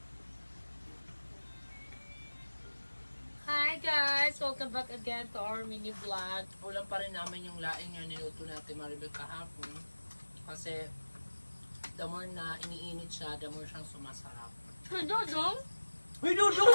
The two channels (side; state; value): both; inverted; correlation -1.00